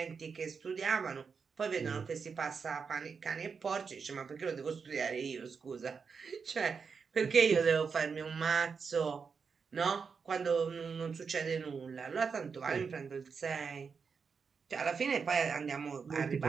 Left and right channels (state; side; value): quieter; left; 5.6 dB